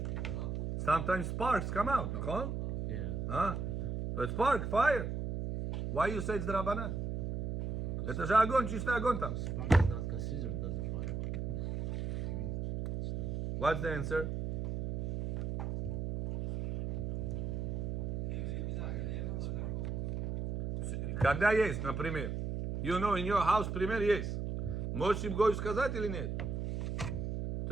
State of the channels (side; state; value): right; noise; hum, 2 dB below the sound